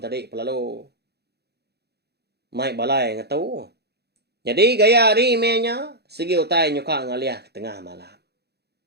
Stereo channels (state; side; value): late; left; 0.48 ms